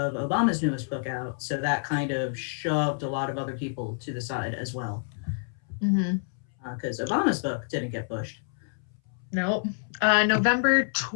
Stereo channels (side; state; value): right; silent; 59 dB below the other